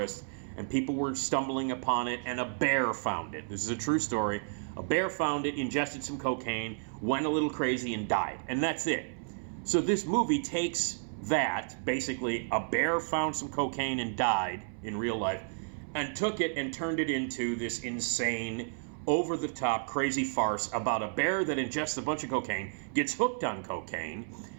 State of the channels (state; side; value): silent; left; 57 dB below the other